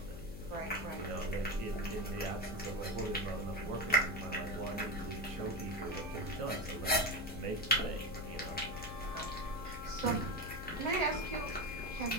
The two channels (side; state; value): left; noise; hum, 10 dB below the sound